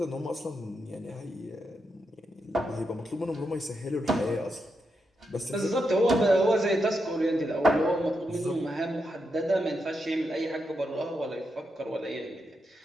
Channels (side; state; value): both; normal; correlation 0.84